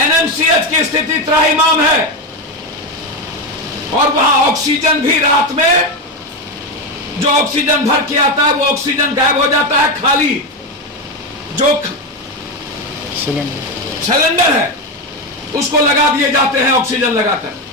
की स्थिति त्राहिमाम है, और वहां ऑक्सीजन भी रात में जो ऑक्सीजन भर के आता है वो ऑक्सीजन गायब हो जाता है, खाली जो सिलेंडर है उसको लगा दिए जाते हैं ऑक्सीजन लगाकर।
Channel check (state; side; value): normal; both; correlation 0.12